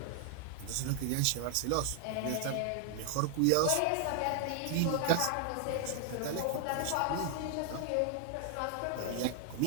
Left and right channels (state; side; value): different; both; correlation 0.00